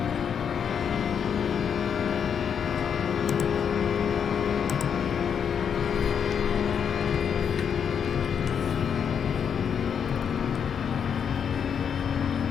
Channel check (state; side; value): quieter; right; 7.5 dB